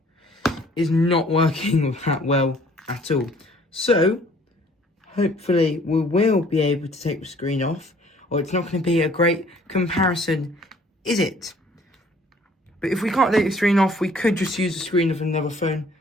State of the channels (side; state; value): both; normal; correlation 0.57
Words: is not working that well. at all. So, hopefully we will be able to take the screen off, or it's not going to be a great comparison, is it? But if we can't take the screen off, we could just use the screen of another phone.